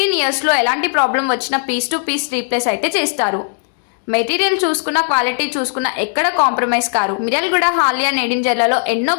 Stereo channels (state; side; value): silent; right; digital silence